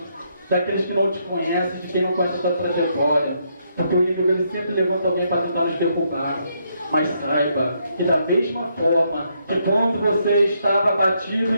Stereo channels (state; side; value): inverted; both; correlation -0.76